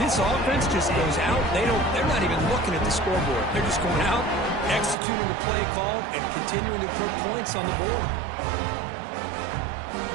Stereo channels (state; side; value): drops out; left; at 5.0 s